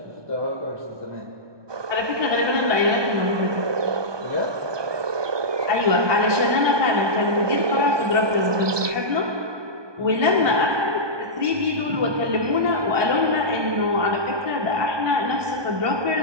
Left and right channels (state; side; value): late; left; 1.2 ms